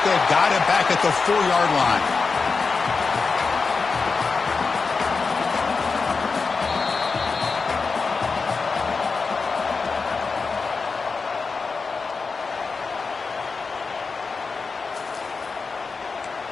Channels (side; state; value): right; quieter; 4.6 dB